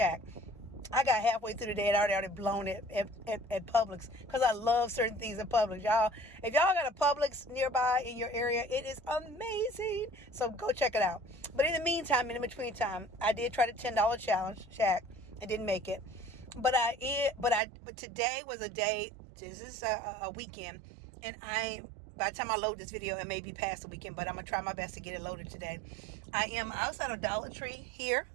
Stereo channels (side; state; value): left; drops out; at 17.6 s